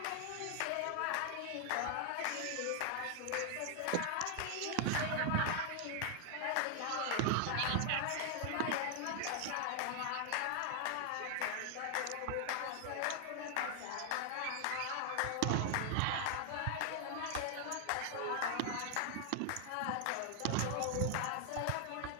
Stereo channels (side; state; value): both; different; correlation 0.00